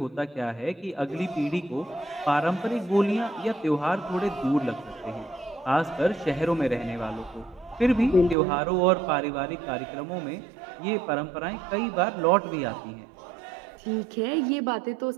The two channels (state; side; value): drops out; left; at 8.3 s